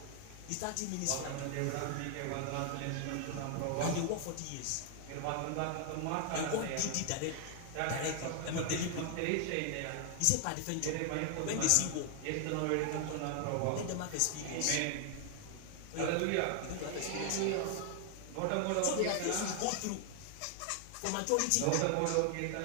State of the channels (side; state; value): both; different; correlation 0.00